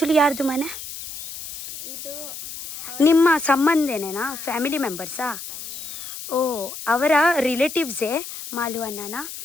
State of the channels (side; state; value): left; noise; hiss, 10 dB below the sound